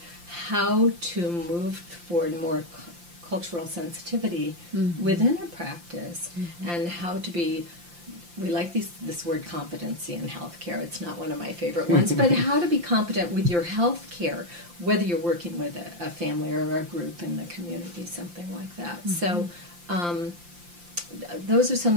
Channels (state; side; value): late; left; 5.8 ms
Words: how to move toward more cultural sensitivity within a practice, and how to be, we like this word competency in healthcare. It's not one of my favorite ones, but how to be competent with your healthcare, whether you're working with a family or a group in the community, something like that. So those are some